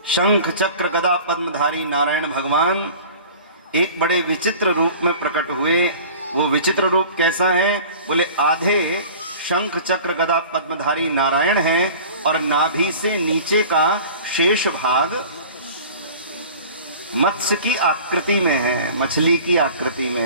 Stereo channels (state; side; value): inverted; both; correlation -0.42